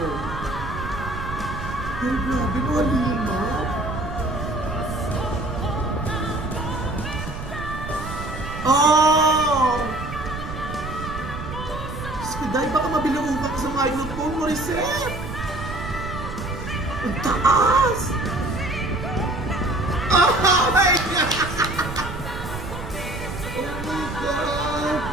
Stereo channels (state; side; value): noise; right; rumble, 8 dB below the sound